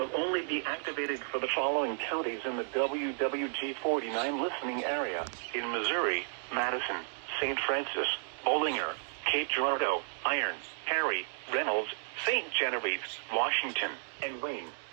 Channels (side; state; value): left; silent; digital silence